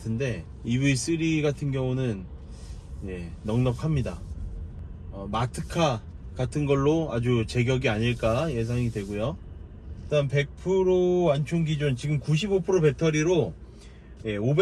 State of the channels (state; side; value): identical; both; correlation 1.00